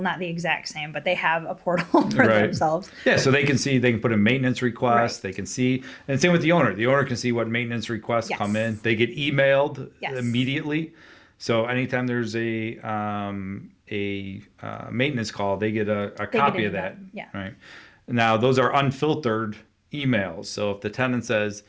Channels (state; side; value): identical; both; correlation 1.00